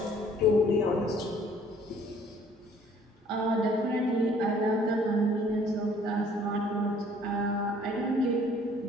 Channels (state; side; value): normal; both; correlation 0.58